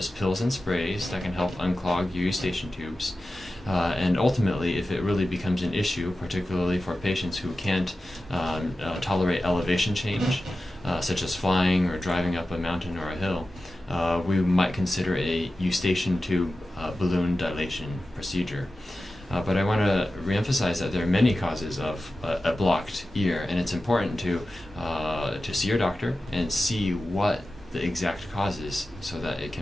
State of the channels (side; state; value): both; normal; correlation 0.94